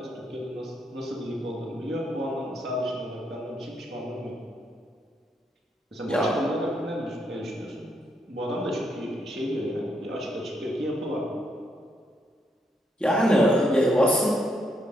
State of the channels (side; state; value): both; normal; correlation 0.76